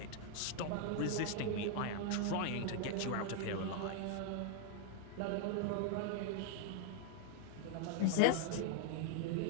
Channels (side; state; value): both; different; correlation -0.01